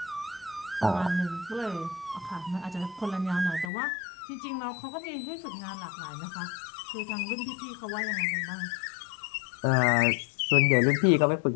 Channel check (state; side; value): drops out; right; at 3.7 s